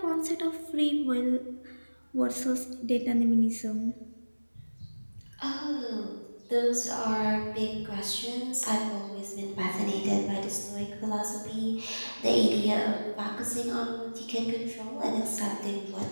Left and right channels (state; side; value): inverted; both; correlation -1.00